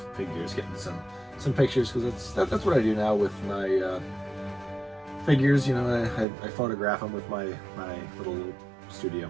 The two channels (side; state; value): left; drops out; at 6.2 s